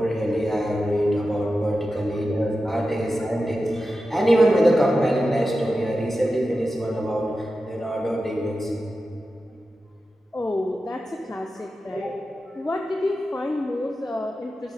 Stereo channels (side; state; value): both; normal; correlation 0.92